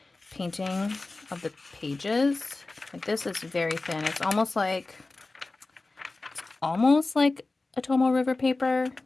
painting of the pages. Like, this is very thin. It's almost like a Tomo River paper,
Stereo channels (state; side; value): quieter; right; 3.3 dB